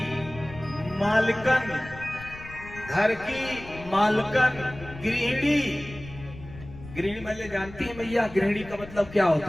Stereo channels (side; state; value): left; noise; rumble, 16 dB below the sound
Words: मालकन गृहिणी। गृहिणी मतलब जानती है भैया, गृहिणी का मतलब क्या